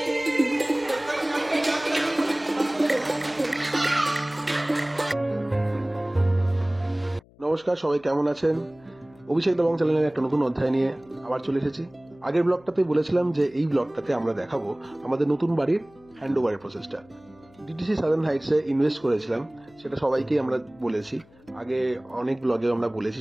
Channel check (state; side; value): noise; left; hum, 27 dB below the sound